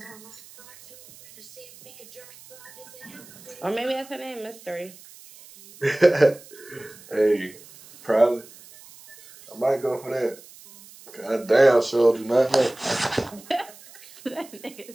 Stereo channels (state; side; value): noise; right; hiss, 21 dB below the sound